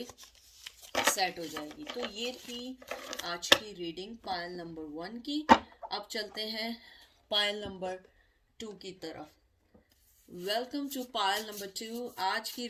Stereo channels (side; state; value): both; identical; correlation 1.00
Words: सेट हो जाएगी। तो ये थी आज की रीडिंग पायल नंबर 1 की। अब चलते हैं पायल नंबर 2 की तरफ। Welcome to Payal number 2। आज की